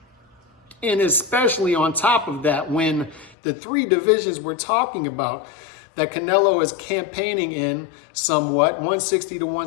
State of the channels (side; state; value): right; drops out; at 3.4 s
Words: And especially on top of that, when the 3 divisions we're talking about that Canelo is campaigning in somewhat, 160 to